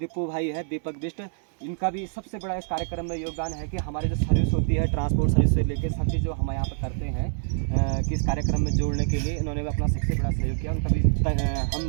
भाई है, दीपक बिष्ट, इनका भी सबसे बड़ा इस कार्यक्रम में योगदान है कि हमारी जो सर्विस होती है, ट्रांसपोर्ट सर्विस से लेकर सब चीज़ जो हम यहाँ पर करते हैं कि इस कार्यक्रम में जोड़ने के लिए इन्होंने भी अपना सबसे बड़ा सहयोग किया। उनका भी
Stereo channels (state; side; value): silent; left; digital silence